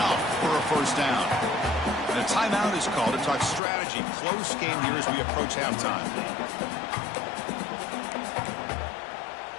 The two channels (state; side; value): drops out; right; at 3.6 s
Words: for a first down. And a timeout is called to talk strategy. Close game here as we approach halftime.